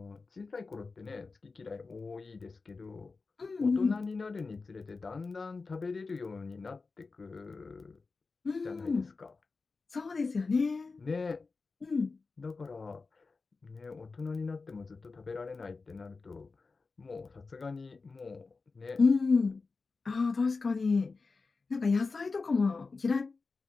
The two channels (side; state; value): right; quieter; 4.2 dB